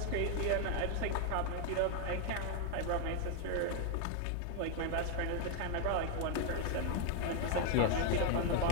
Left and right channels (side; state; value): both; different; correlation 0.01